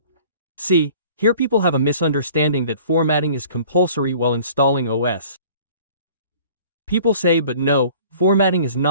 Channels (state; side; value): inverted; both; correlation -0.49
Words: See, here people have a misunderstanding that formatting is compulsory while installing OS. People say, but no, formatting is